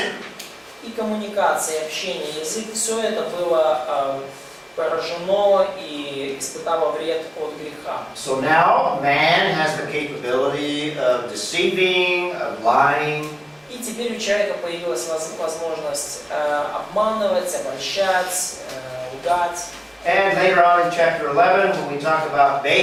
И коммуникация, и общение, язык, все это было поражено и испытало вред от греха. So now man has the capability of deceiving, of lying. И теперь у человека появилась возможность обманывать, обольщать, лгать. And later on in chapter 11, when we talk about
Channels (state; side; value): identical; both; correlation 1.00